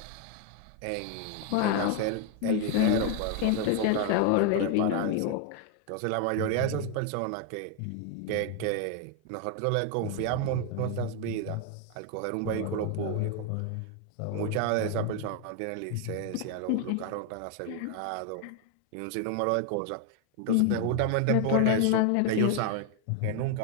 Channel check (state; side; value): different; both; correlation 0.01